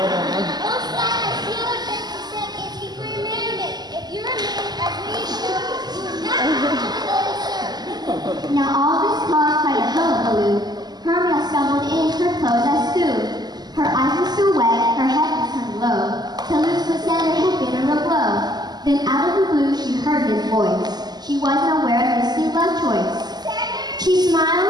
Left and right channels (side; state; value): left; late; 0.20 ms